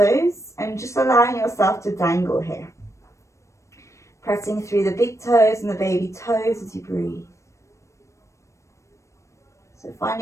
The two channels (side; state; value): right; late; 0.15 ms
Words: and just allowing yourself to dangle here. Pressing through the big toes and the baby toes as you breathe. So